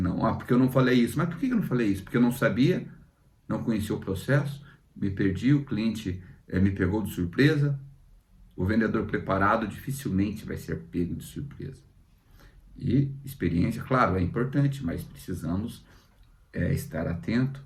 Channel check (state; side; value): identical; both; correlation 1.00